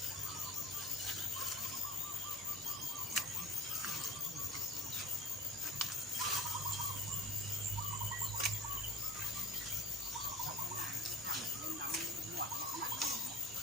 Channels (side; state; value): both; normal; correlation 0.47